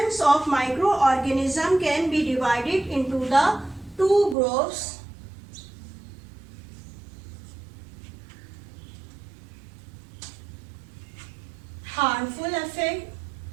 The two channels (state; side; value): drops out; left; at 4.4 s